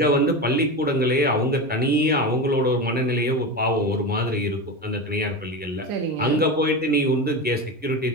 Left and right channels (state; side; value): normal; both; correlation 0.22